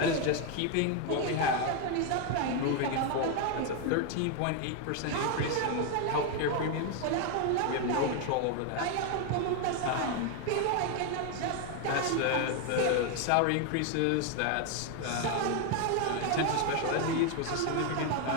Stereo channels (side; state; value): both; different; correlation 0.01